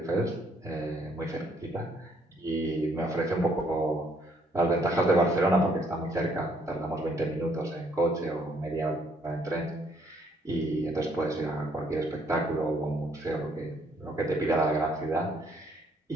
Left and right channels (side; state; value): both; normal; correlation 0.67